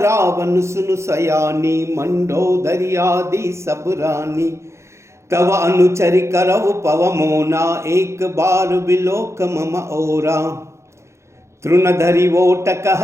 सुनु सयानी मंडोदरी आदि सब रानी। तव अनुचरि करव पव मोना एक बार बिलोक मम ओरा। तृणधरि वोट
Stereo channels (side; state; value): left; late; 0.14 ms